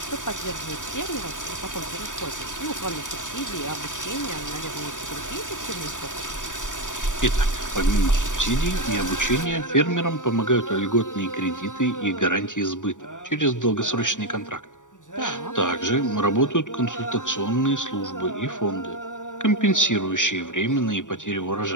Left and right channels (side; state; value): right; late; 0.87 ms